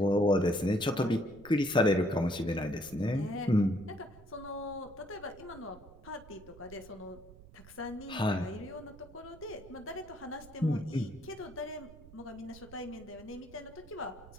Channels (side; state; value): right; noise; rumble, 20 dB below the sound